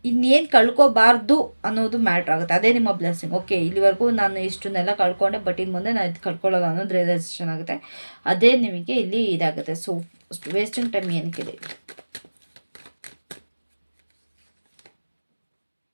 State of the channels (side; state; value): both; inverted; correlation -1.00